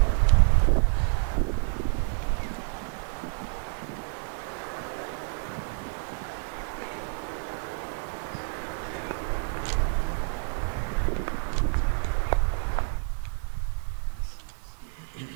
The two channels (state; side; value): silent; left; 59 dB below the other